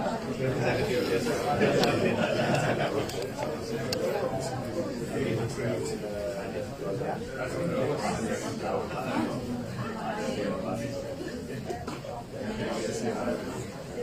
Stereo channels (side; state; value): both; identical; correlation 1.00